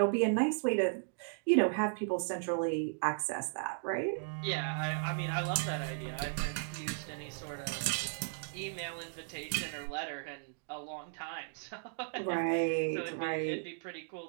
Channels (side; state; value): left; silent; digital silence